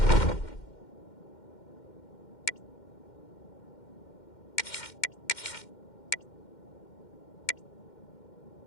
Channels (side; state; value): right; late; 2.1 ms